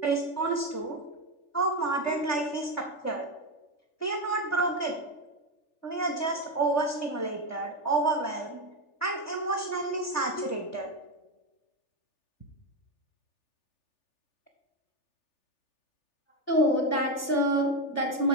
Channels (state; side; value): late; right; 3.4 ms